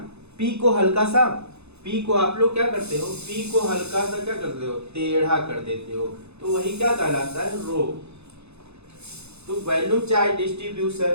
पी को हल्का सा, पी को आप लोग क्या करते हो, पी को हल्का सा क्या करते हो, टेढ़ा कर देते हो, तो वही क्या कहलाता है, रो। तो वॉल्यूम चार्ज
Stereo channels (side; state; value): left; late; 0.80 ms